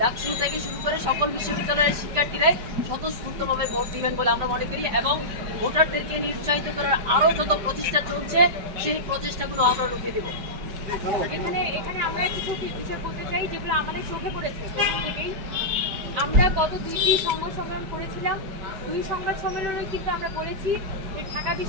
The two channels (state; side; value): late; left; 5.4 ms